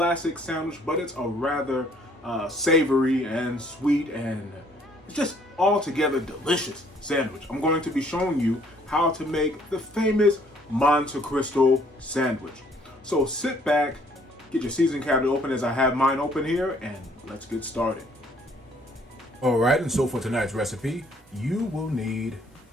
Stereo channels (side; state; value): both; normal; correlation 0.62